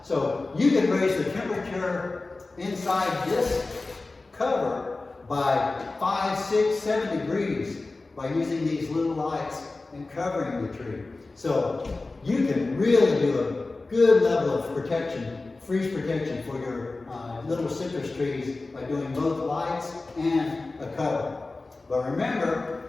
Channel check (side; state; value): right; quieter; 3.4 dB